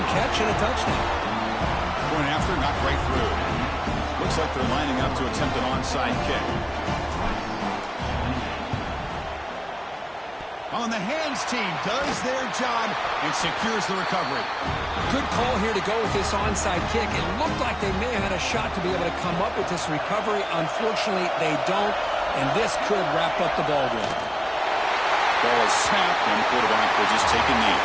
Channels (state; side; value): identical; both; correlation 1.00